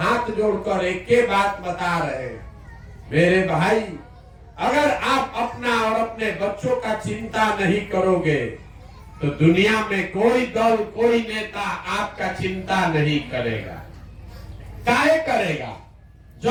जोड़कर एक ही बात बता रहे हैं, मेरे भाई अगर आप अपना और अपने बच्चों का चिंता नहीं करोगे तो दुनिया में कोई दल कोई नेता आपका चिंता नहीं करेगा। काहे करेगा?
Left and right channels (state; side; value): identical; both; correlation 1.00